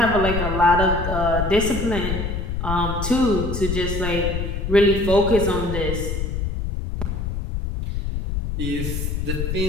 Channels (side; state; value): left; noise; rumble, 3 dB below the sound